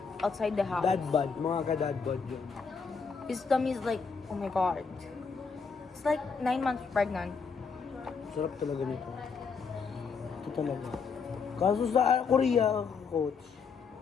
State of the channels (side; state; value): right; quieter; 5.4 dB